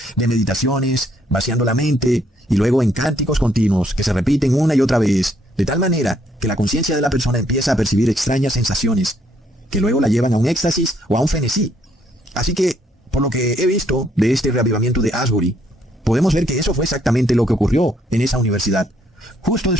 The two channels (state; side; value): normal; both; correlation 0.69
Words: de meditaciones, vaciando la mente, y luego en cánticos continuos que se repiten una y otra vez, de tal manera que la conciencia de la persona empieza a percibir extrañas sensaciones, que luego la llevan a un éxtasis o a un frenesí. Así que, por lo que he visto de este reavivamiento de Asbury, podemos ver que eso fue exactamente lo que ocurrió en esa universidad. Justo